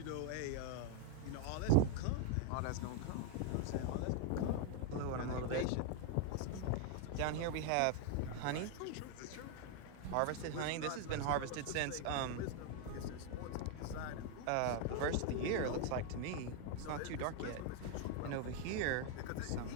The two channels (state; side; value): different; both; correlation 0.01